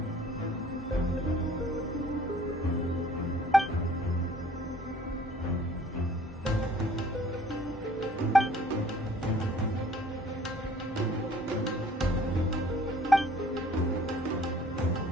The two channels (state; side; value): normal; both; correlation 0.55